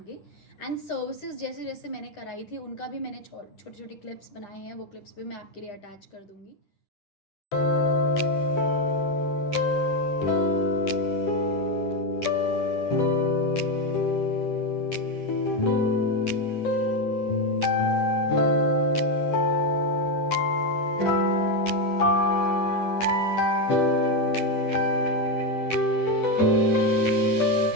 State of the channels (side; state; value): right; late; 9.9 ms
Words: एंड सर्विसेज जैसे जैसे मैंने कराई थी उनका भी मैंने छोटे छोटे क्लिप्स बनाए हैं, वो क्लिप्स भी मैं आपके लिए अटैच कर दूंगी।